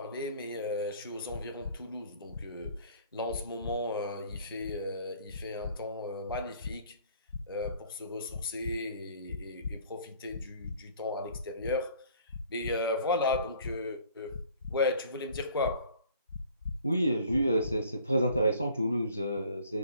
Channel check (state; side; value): inverted; both; correlation -0.55